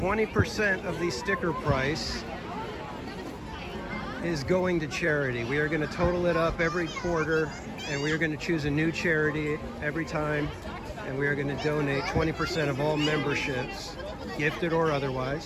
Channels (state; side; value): identical; both; correlation 1.00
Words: of the sticker price is going to charity. We are going to total it up every quarter, and we are going to choose a new charity every time, and we are going to donate 20% of all memberships, gifted or